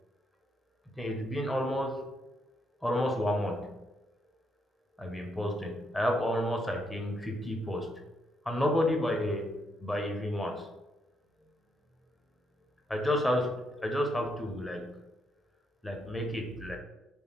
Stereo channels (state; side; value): normal; both; correlation 0.77